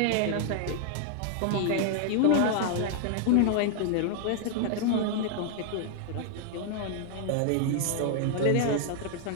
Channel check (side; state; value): both; different; correlation 0.00